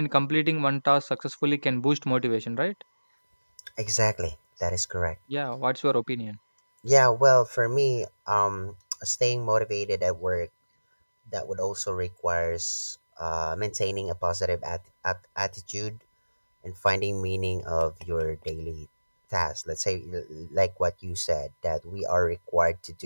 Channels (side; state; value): both; inverted; correlation -1.00